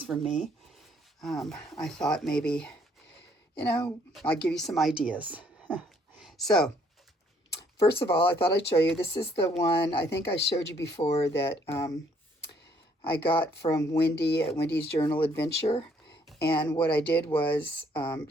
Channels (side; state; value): both; normal; correlation 0.65